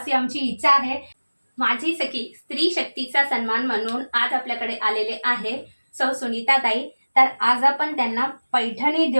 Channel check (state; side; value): inverted; both; correlation -1.00